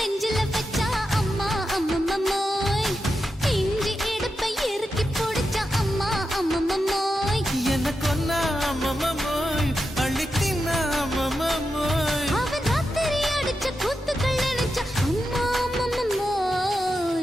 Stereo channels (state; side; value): normal; both; correlation 0.88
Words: வச்சா அம்மா அம்மம்மாய் இஞ்சி இடுப்பை இறுக்கி பிடிச்சா அம்மா அம்மம்மாய்